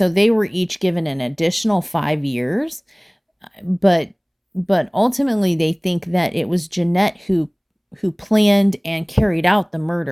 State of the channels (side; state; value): both; identical; correlation 1.00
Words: they were each given an additional 5 years, but ultimately they think that it was Jeanette who planned and carried out the